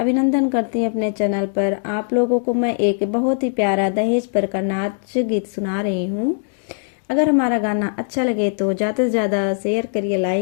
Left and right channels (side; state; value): right; silent; digital silence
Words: करती हूँ अपने चैनल पर। आप लोगों को मैं एक बहुत ही प्यारा दहेज पर का नाच गीत सुना रही हूँ। अगर हमारा गाना अच्छा लगे तो ज़्यादा से ज़्यादा शेयर करिए,